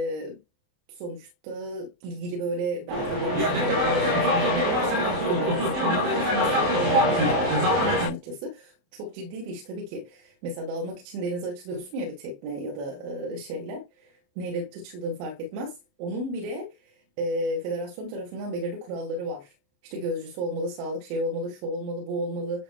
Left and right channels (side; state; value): left; late; 28 ms